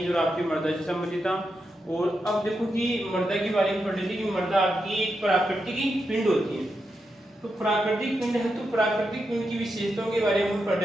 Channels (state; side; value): normal; both; correlation 0.86